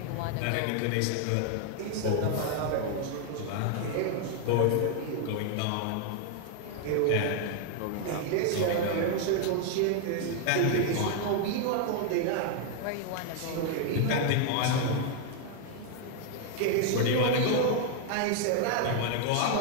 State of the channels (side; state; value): both; different; correlation 0.00